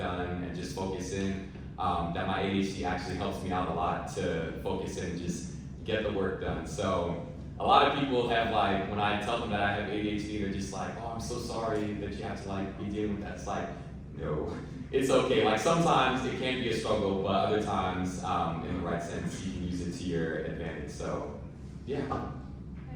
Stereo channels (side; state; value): both; identical; correlation 1.00